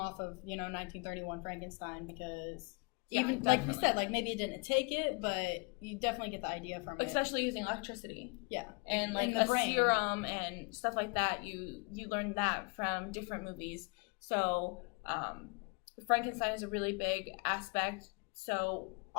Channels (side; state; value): right; quieter; 32.8 dB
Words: of 1931 Frankenstein, because even like we said, maybe it didn't take it, but you definitely get the idea from it. Especially using electricity. Yeah. And the brain. serum and stuff like that. You learn that from different movies. So Frankenstein is a really big aspect. So